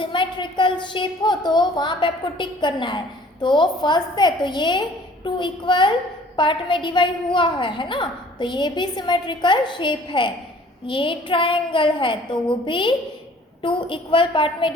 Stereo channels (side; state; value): both; normal; correlation 0.53